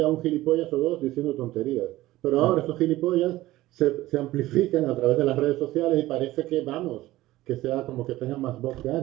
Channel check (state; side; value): quieter; left; 16.7 dB